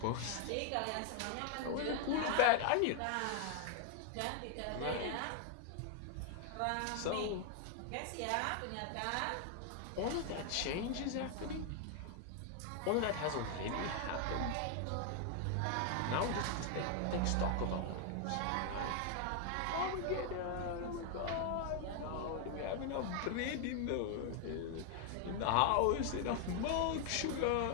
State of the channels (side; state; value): both; different; correlation 0.00